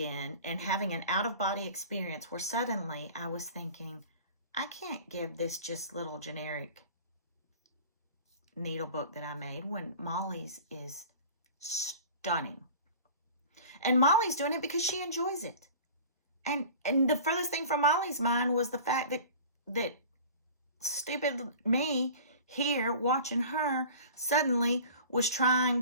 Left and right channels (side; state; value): both; inverted; correlation -0.41